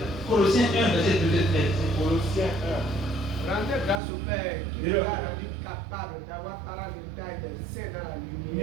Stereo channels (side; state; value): left; drops out; at 4.0 s